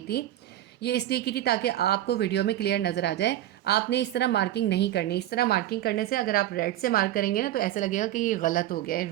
थी, ये इसलिए की थी ताकि आपको वीडियो में क्लियर नज़र आ जाए। आपने इस तरह मार्किंग नहीं करनी। इस तरह मार्किंग करने से अगर आप रेड से मार्क करेंगे ना तो ऐसा लगेगा कि ये गलत हो गया है,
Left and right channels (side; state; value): left; quieter; 13.4 dB